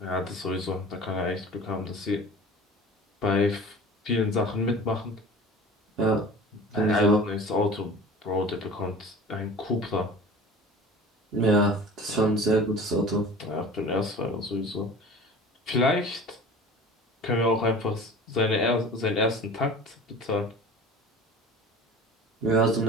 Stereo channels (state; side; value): normal; both; correlation 0.40